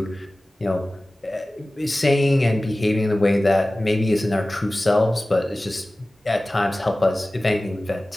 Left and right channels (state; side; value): normal; both; correlation 0.97